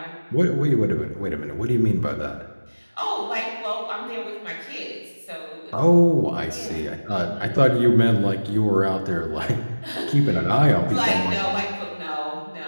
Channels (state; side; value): inverted; both; correlation -1.00